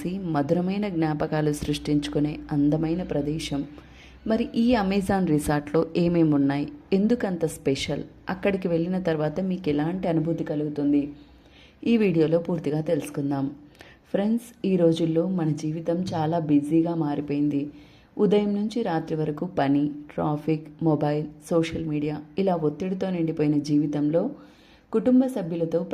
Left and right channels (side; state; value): both; identical; correlation 1.00